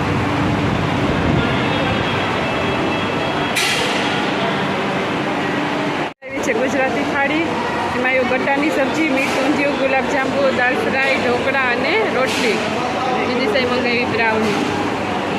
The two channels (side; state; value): both; identical; correlation 1.00